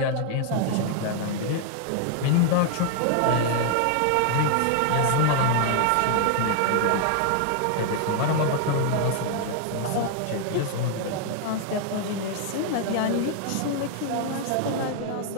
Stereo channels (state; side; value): different; both; correlation 0.00